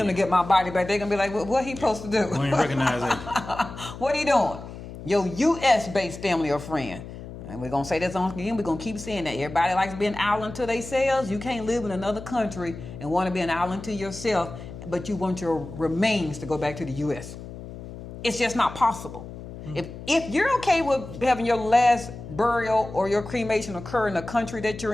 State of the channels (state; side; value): noise; left; hum, 12 dB below the sound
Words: to get my body back. They're going to be like, what he supposed to do? We ain't recognize it. What are you doing? Your U.S.-based family or friend. And we're going to say this on again. We're going to keep saying that. Everybody likes being island to themselves. You can't live in another country and want to be an island to yourself, but you want your remains to go back to the U.S. It's just not possible. If you're okay with having your last burial or your cremation occur in the country that you're